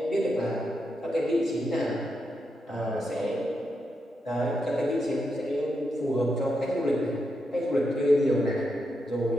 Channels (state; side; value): normal; both; correlation 0.84